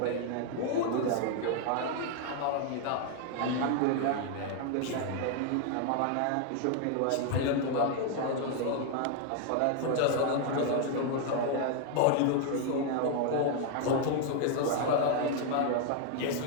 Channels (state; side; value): different; both; correlation 0.00